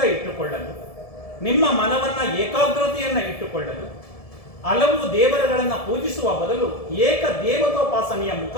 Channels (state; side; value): late; right; 1.7 ms